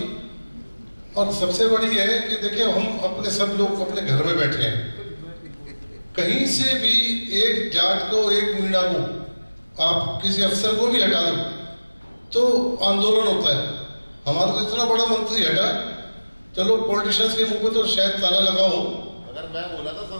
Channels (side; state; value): both; inverted; correlation -1.00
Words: और सबसे बड़ी यह है कि देखिए हम अपने सब लोग अपने घर में बैठे हैं, कहीं से भी एक जाट को, एक मीणा को, आप किसी अफसर को भी हटा दो तो आंदोलन होता है। हमारा तो इतना बड़ा मंत्री हटा, चलो पॉलिटिशियंस के मुंह पे तो शायद ताला लगा हो, अगर मैं बोला था